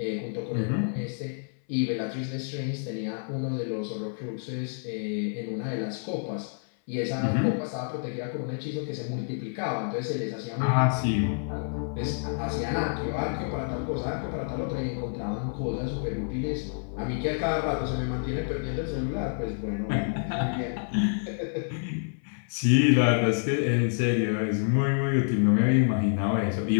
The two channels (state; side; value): silent; right; 59 dB below the other